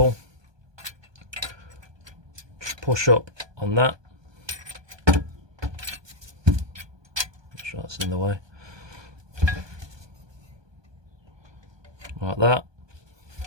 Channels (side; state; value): left; late; 1.2 ms